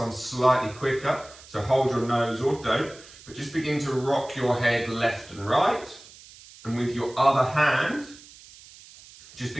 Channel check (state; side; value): noise; right; hiss, 21 dB below the sound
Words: slightly quicker. So hold your nose or don't, but just begin to rock your head left and right. And with your other hand, just